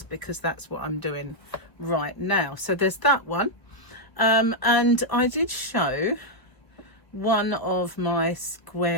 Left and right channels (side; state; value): right; late; 1.0 ms